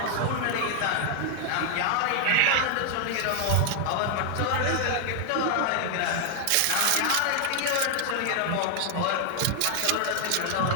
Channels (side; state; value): both; different; correlation 0.00